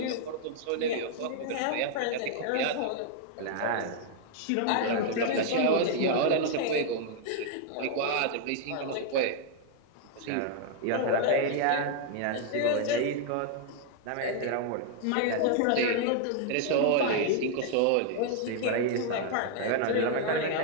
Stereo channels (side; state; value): both; different; correlation 0.00